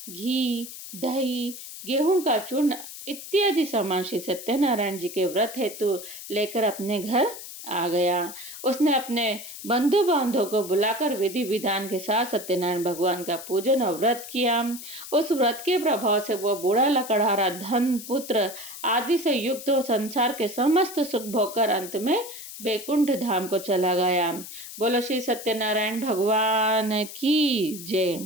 घी, दही, गेहूं का चूर्ण इत्यादि सामान श्री सत्यनारायण जी के व्रत हेतु लेकर अपने घर आ गया। उसने अपने बंधु बांधव को बुलाकर विधि विधान के साथ सत्यनारायण भगवान का पूजन और व्रत किया। उस व्रत के प्रभाव से वह बूढ़ा लकड़हारा धन, पुत्र आदि से युक्त हो संसार के समस्त सुख भोगकर अंत में बैकुंठ धाम को चला गया। बोलो श्री सत्यनारायण भगवान की जय।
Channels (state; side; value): noise; left; hiss, 12 dB below the sound